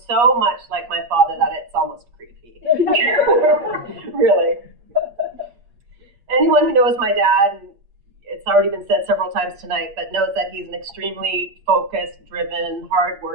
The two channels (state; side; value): late; left; 8.5 ms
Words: much like my father that it's almost creepy. Really. Anyone who knows my dad, and it's already been said several times tonight, but knows that he's an extremely focused, driven,